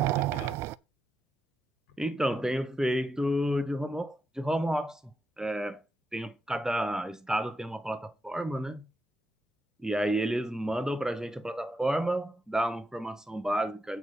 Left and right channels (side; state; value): both; normal; correlation 0.84